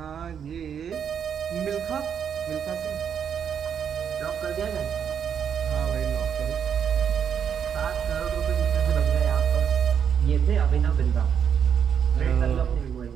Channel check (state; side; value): quieter; left; 7.9 dB